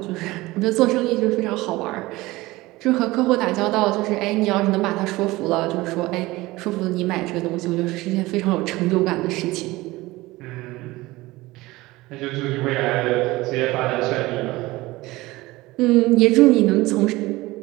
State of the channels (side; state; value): left; quieter; 19.7 dB